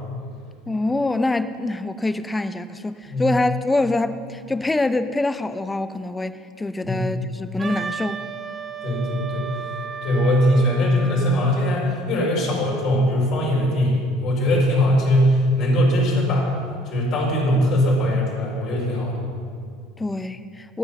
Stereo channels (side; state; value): both; normal; correlation 0.67